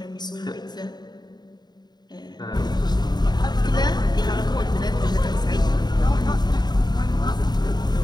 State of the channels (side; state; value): right; late; 0.20 ms